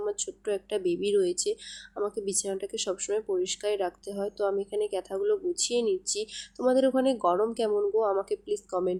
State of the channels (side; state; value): both; identical; correlation 1.00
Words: আমার ছোট্ট একটা বেবি রয়েছে, আমাকে বিছানাটাকে সবসময় পরিষ্কারই রাখতে হয়। তো আমি এখানে ক্যাথাগুলো গুছিয়ে নিচ্ছি। তোমাদের ওখানে গরম কেমন গো? আমাকে প্লিজ